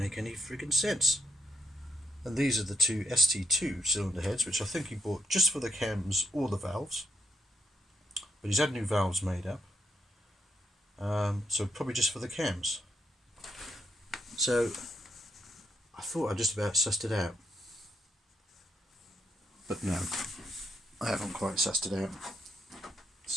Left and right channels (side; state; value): both; normal; correlation 0.78